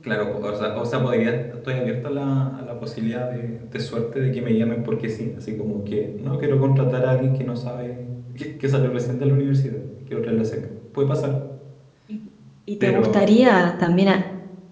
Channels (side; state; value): both; identical; correlation 1.00